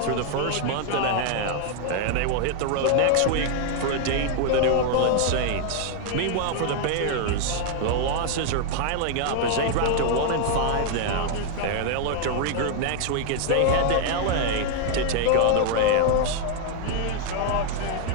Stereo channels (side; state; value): both; different; correlation 0.00